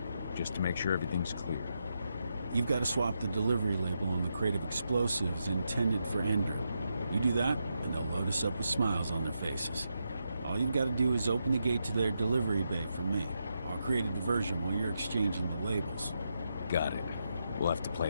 just to make sure everything's clear. You've got to swap the delivery label on the crate of explosives intended for Endrin. You do that, and they'll load us up with smiles on their faces. All you've got to do is open the gate to their delivery bay for me. I'll create a diversion while you're exchanging the labels. Got it. We'll have to play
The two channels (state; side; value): inverted; both; correlation -0.84